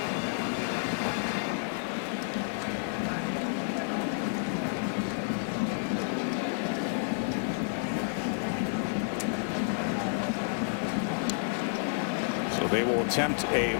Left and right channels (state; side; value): silent; right; digital silence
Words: They will attempt a